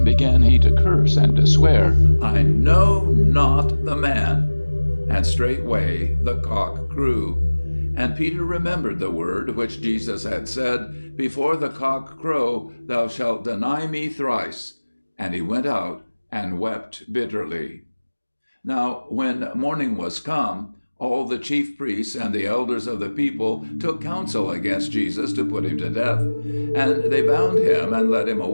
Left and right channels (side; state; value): both; inverted; correlation -1.00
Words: began he to curse and to swear, I know not the man. And straightway the cock crew. And Peter remembered the word which Jesus had said, Before the cock crow, thou shalt deny me thrice. And he went out and wept bitterly. Now, when morning was come, all the chief priests and the elders of the people took counsel against Jesus to put him to death. And they bound him and led him